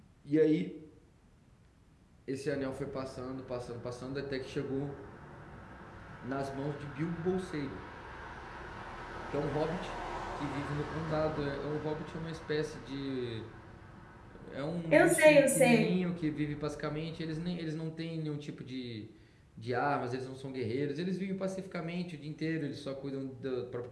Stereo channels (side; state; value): both; identical; correlation 1.00